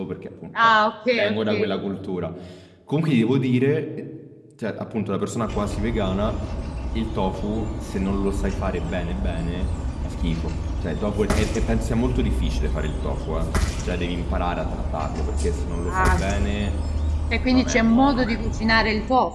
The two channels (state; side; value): identical; both; correlation 1.00